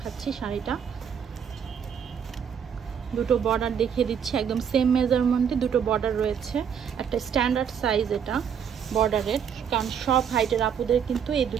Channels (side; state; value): left; quieter; 7.7 dB